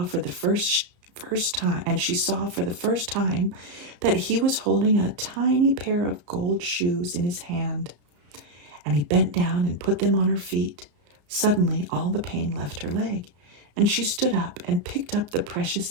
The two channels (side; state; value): left; late; 34 ms